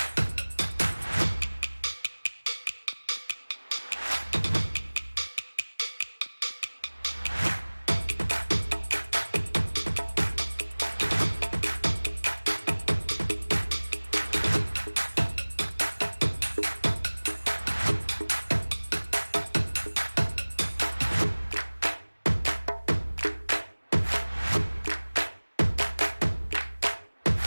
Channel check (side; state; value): both; inverted; correlation -1.00